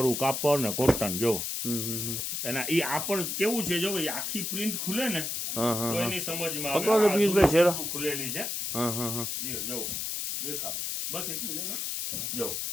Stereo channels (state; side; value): noise; left; hiss, 2 dB below the sound